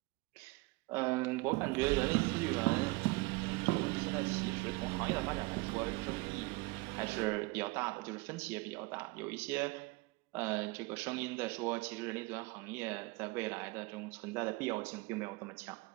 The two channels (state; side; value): quieter; left; 23.7 dB